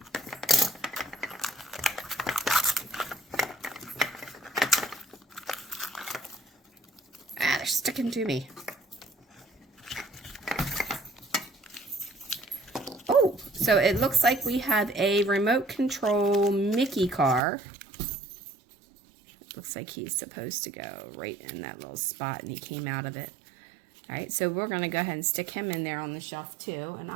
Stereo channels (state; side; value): drops out; left; at 17.4 s